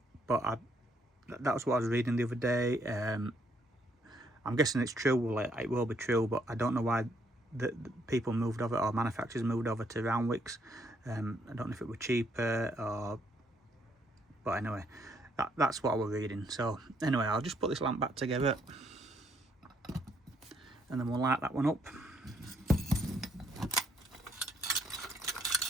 But that was what I was reading the other day. I'm guessing it's true. Well, it will be true, but I don't know why the people moved over, or manufacturers moved over to round wicks. I don't know if it were cheaper or, but anyway, that's what I was reading. So anyway, I'll just put this lamp back together and then we'll light that one up.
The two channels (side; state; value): both; normal; correlation 0.70